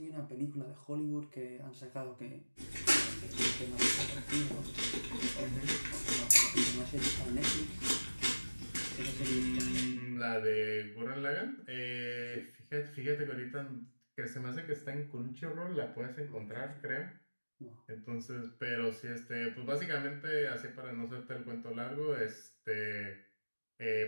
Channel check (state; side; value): inverted; both; correlation -1.00